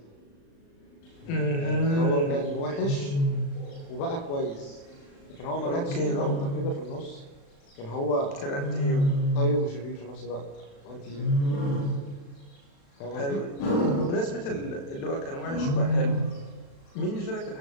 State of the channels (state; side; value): late; right; 36 ms